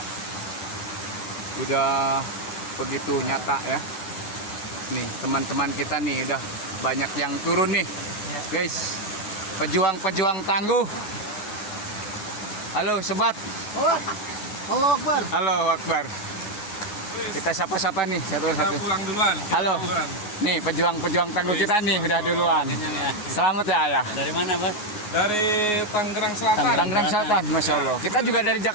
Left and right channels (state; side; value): late; right; 9.6 ms